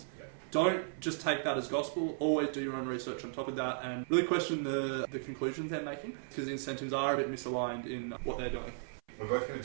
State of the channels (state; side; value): silent; left; 54 dB below the other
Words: don't just take that as gospel. Always do your own research on top of that and really question the conclusions they're making, because incentives are a bit misaligned in what they're doing. We're both going to